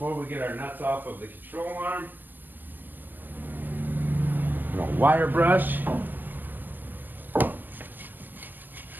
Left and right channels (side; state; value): left; late; 0.087 ms